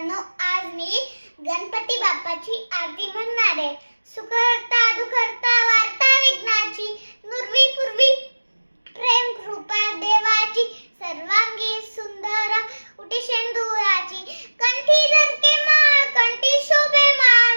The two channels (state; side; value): inverted; both; correlation -1.00